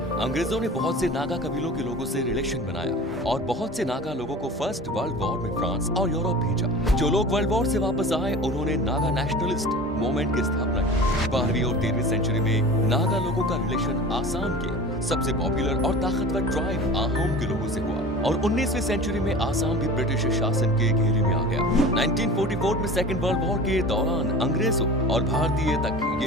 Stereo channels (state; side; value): normal; both; correlation 0.38